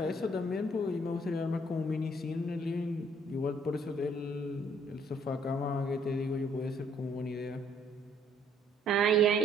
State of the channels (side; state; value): both; normal; correlation 0.63